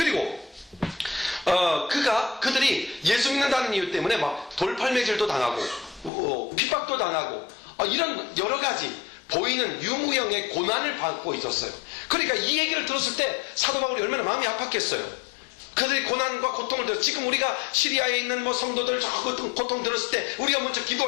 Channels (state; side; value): drops out; right; at 6.1 s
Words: 그들이 예수 믿는다는 이유 때문에 막 돌팔매질도 당하고 핍박도 당하고 이런 여러 가지 보이는 유무형의 고난을 받고 있었어요. 그러니까 이 얘기를 들었을 때 사도 바울이 얼마나 마음이 아팠겠어요. 그들이 고난과 고통을 들었어요. 지금 우리가 시리아에 있는 성도들 저 고통 들었을 때 우리가 먼저